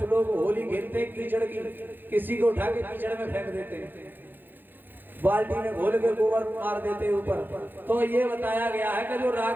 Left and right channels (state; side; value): late; left; 0.092 ms